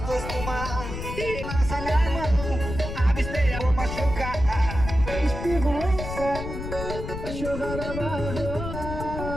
dois tomar. E lança minha mão, absteia, vou machucar. Esperança, vai chorar na barra.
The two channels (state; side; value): noise; left; rumble, 7 dB below the sound